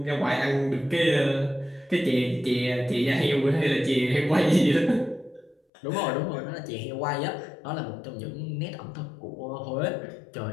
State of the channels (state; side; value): drops out; right; at 5.6 s